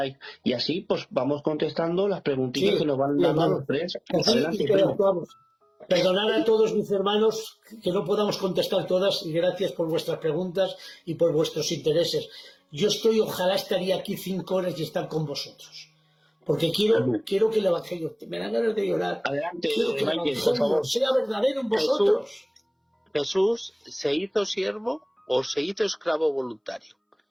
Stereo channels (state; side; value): identical; both; correlation 1.00